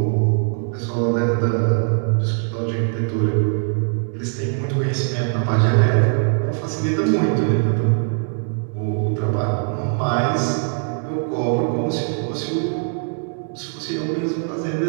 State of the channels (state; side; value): silent; left; 62 dB below the other